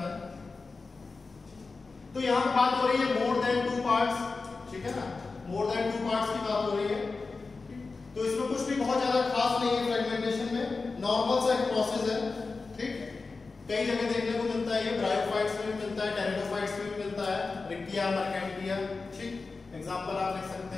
है। तो यहां पर बात हो रही है मोर देन टू पार्ट्स, ठीक है ना, मोर देन टू पार्ट्स की बात हो रही है। तो इसमें कुछ भी बहुत ज्यादा खास नहीं है फ्रैगमेंटेशन में, नॉर्मल सा एक प्रोसेस है, ठीक। कई जगह देखने को मिलता है, ये ब्रायोफाइट्स में भी मिलता है, टेरिडोफाइट्स में भी मिलता है, रिक्टिया, मर्केंटिया, ठीक। एग्जांपल आप लिख सकते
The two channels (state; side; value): quieter; right; 4.1 dB